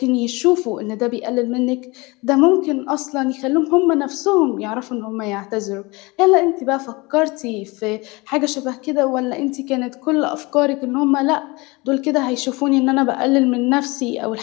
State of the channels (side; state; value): right; quieter; 24.7 dB